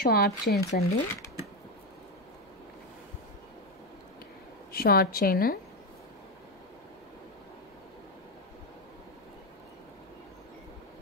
షార్ట్ చైన్స్ అండి. Short chain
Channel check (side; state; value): both; normal; correlation 0.10